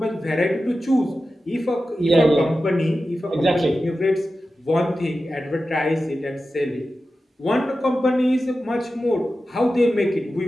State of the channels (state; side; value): normal; both; correlation 0.93